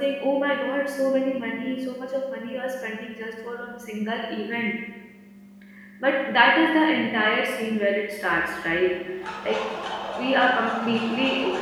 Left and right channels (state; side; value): identical; both; correlation 1.00